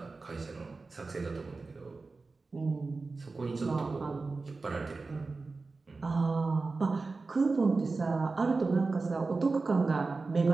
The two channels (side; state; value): left; quieter; 3.8 dB